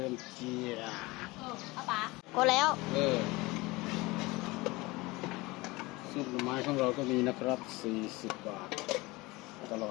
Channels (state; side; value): quieter; right; 22.4 dB